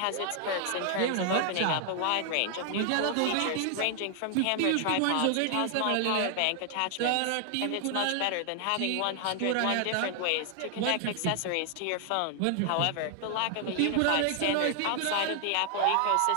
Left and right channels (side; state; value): both; different; correlation 0.00